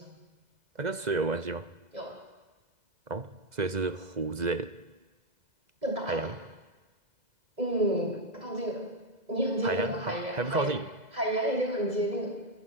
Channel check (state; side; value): late; left; 2.0 ms